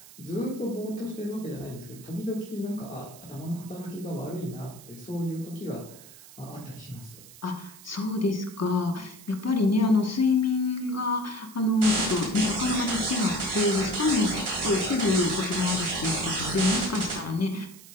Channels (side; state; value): right; noise; hiss, 20 dB below the sound